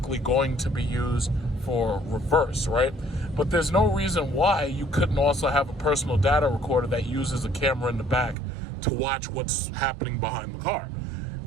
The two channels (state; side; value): drops out; left; at 8.3 s